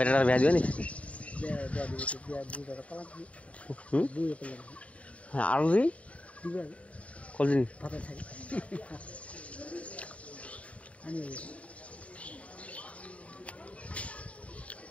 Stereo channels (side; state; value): right; late; 0.065 ms